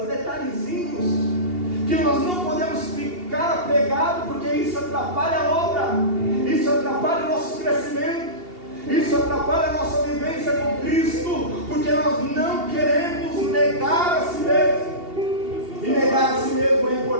detalhezinhos, que nós não podemos ficar apegados, porque isso atrapalha a obra, isso atrapalha o nosso crescimento, isso atrapalha a nossa vivência com Cristo, porque nós não queremos negar a si mesmo. E negar a si mesmo é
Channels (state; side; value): late; left; 2.8 ms